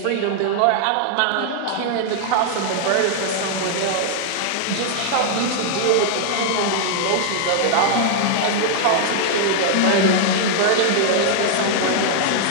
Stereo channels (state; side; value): different; both; correlation -0.01